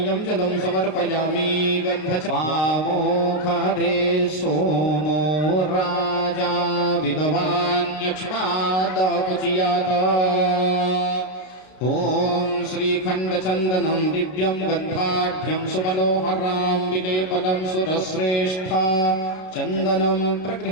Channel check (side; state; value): right; late; 32 ms